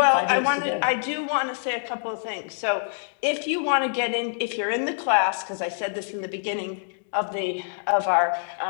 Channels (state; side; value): silent; right; digital silence